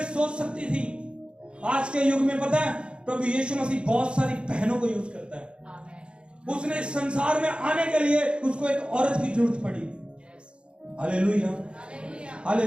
सोच सकती थी। आज के युग में पता है प्रभु यीशु मसीह बहुत सारी बहनों को यूज करता है। उसने संसार में आने के लिए उसको एक औरत की जरूरत पड़ी। Hallelujah,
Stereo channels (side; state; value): left; late; 0.056 ms